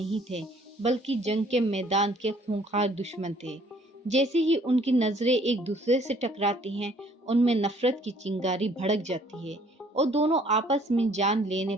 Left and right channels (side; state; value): both; normal; correlation 0.60